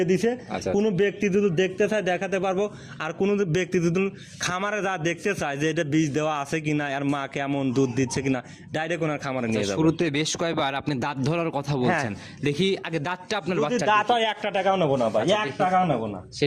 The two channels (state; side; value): identical; both; correlation 1.00